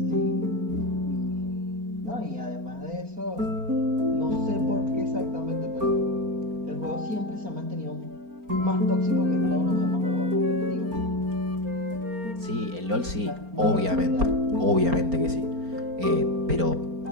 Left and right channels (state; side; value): late; left; 4.4 ms